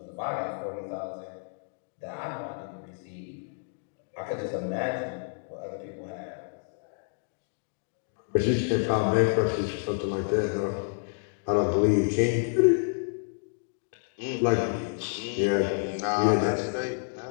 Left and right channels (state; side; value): silent; right; digital silence